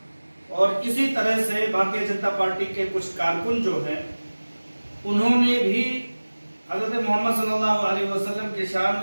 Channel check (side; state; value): both; inverted; correlation -1.00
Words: और इसी तरह से भारतीय जनता पार्टी के कुछ कारकुन जो हैं, उन्होंने भी हजरत मोहम्मद सल्लल्लाहु अलैहि वसल्लम की शान